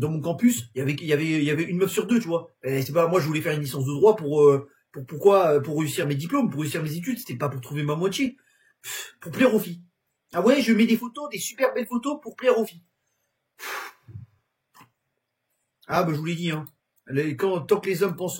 mon campus, il y avait une meuf sur deux, tu vois. Et c'est pas, moi, je voulais faire une licence de droit pour réussir mes diplômes, pour réussir mes études, c'était pas pour trouver ma moitié. Pour plaire aux filles. Ah ouais, je mets des photos, des super belles photos pour plaire aux filles. Ah bah je vous l'ai dit, hein. Tant que les hommes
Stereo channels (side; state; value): both; identical; correlation 1.00